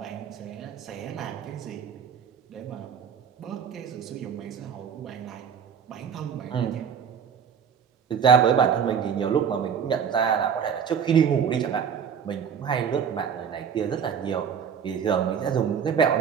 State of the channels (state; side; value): quieter; left; 7.5 dB